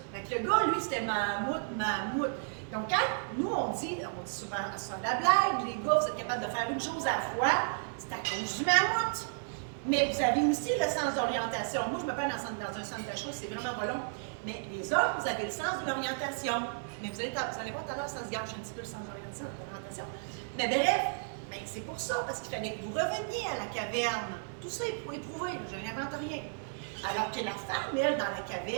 Donc, le gars, lui, c'était mammouth. Donc, quand nous, on dit souvent ça la blague, les gars, vous êtes capables de faire une chose à la fois, c'est à cause du mammouth. Mais vous avez aussi le sens d'orientation. Moi, je me parle dans un centre d'achat, c'est vraiment pas long. Mais les hommes, vous avez le sens de l'orientation. Mais vous allez voir tout à l'heure, ça se gâche un petit peu le sens d'orientation. Mais bref, c'est pour ça, parce qu'il fallait que vous reveniez à la caverne. Tout ça est pour éprouver, je n'invente rien. Alors que la femme, elle, dans la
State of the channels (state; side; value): silent; left; 55 dB below the other